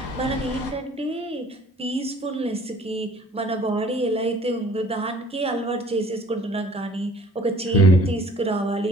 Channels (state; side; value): normal; both; correlation 0.54